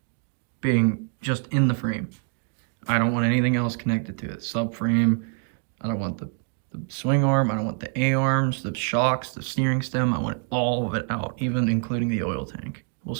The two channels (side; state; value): left; quieter; 36.3 dB